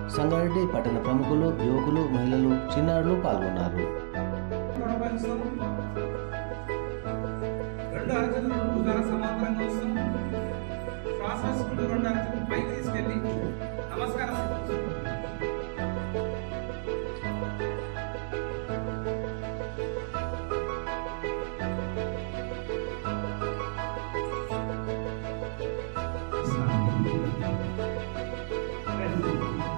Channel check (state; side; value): silent; left; digital silence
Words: సంగారెడ్డి పట్టణ ప్రముఖులు, యువకులు, మహిళలు, చిన్నారులు పాల్గొన్నారు.